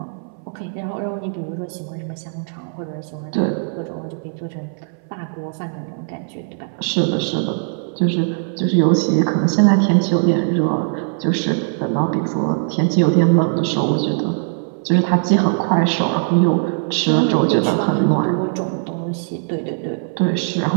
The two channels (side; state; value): left; silent; 61 dB below the other